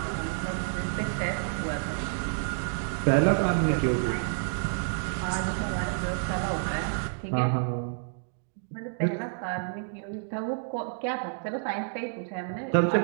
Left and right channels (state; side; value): silent; left; digital silence